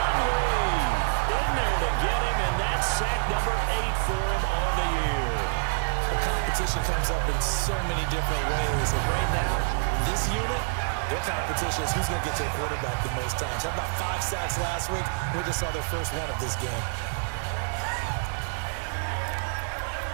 Lee in there to get him, and that's sack number 8 for him on the year. Well, competition comes up in so many different ways. And right now, this unit, their competition is who's going to get to the quarterback the most times. How about 5 sacks last week? We just saw their first one of this game.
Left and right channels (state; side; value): silent; left; digital silence